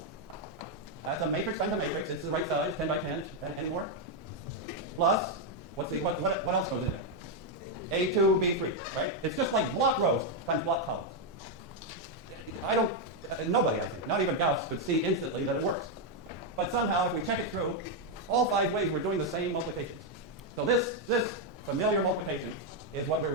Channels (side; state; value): both; normal; correlation 0.01